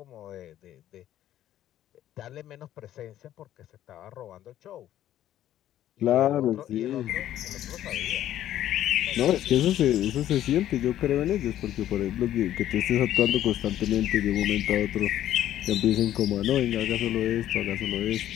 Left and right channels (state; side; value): quieter; right; 12.3 dB